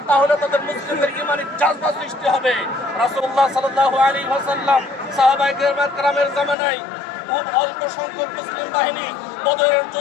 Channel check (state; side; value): drops out; right; at 6.6 s